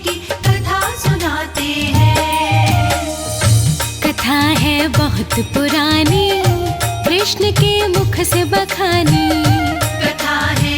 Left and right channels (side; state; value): both; identical; correlation 1.00